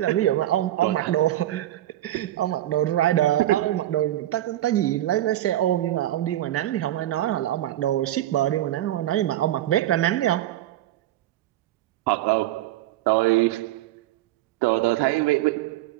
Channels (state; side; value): quieter; left; 14.0 dB